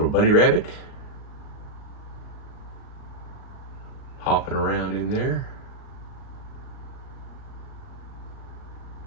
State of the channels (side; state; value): right; late; 38 ms